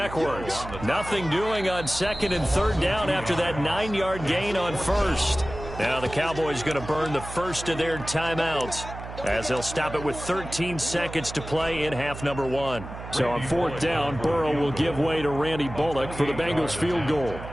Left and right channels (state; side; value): noise; right; hum, 11 dB below the sound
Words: Nothing doing on 2nd and 3rd down after that 9-yard gain on 1st. Now the Cowboys going to burn the first of their timeouts as they'll stop it with 13 seconds to play in half number 1. So on 4th down, Burrow will give way to Randy Bullock for the Bengals field goal.